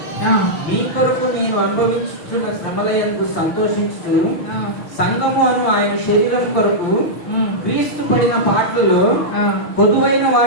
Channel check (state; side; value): late; right; 5.9 ms